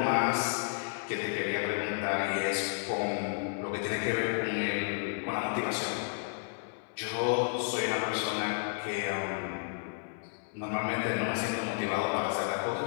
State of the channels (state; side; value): silent; right; 56 dB below the other